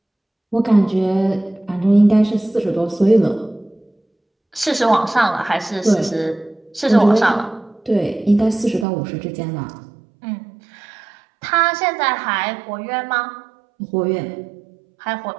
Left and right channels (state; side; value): drops out; left; at 8.8 s